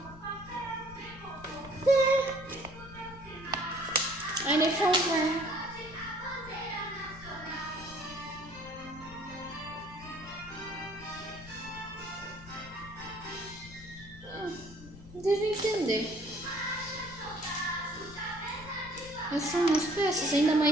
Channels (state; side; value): noise; left; rumble, 17 dB below the sound